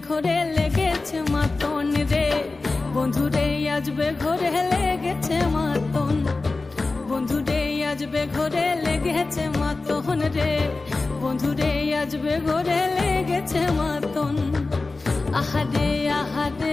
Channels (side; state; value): right; quieter; 3.5 dB